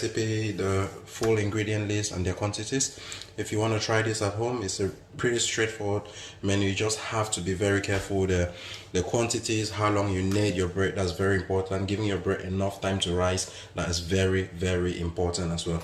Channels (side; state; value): both; identical; correlation 1.00